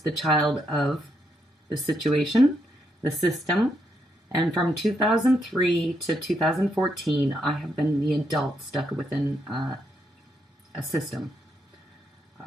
child of the situation, the system, and from 2003 to 2014, I have been the adult stuck within a system.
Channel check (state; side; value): normal; both; correlation 0.78